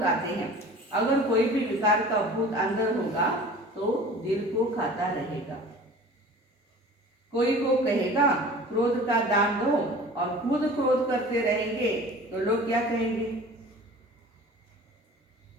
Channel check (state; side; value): normal; both; correlation 0.43